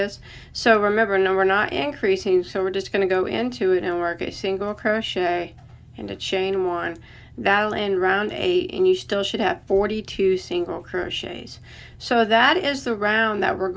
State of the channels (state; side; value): identical; both; correlation 1.00